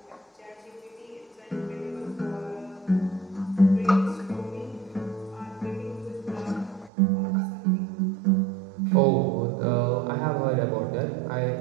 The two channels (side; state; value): left; drops out; at 6.9 s